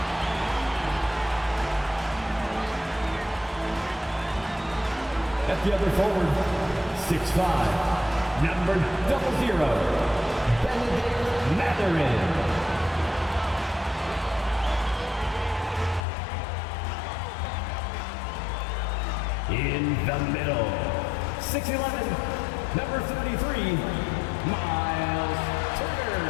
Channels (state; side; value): drops out; right; at 16.0 s